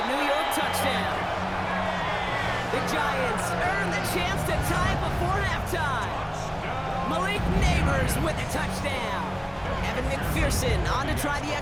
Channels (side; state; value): both; identical; correlation 1.00